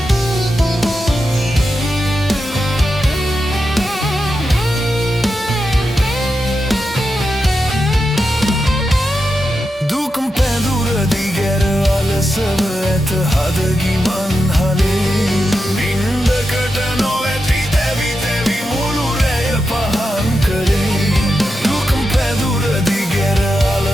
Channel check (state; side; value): normal; both; correlation 0.88